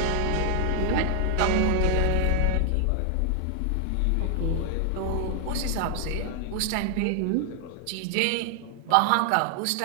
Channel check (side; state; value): both; different; correlation 0.00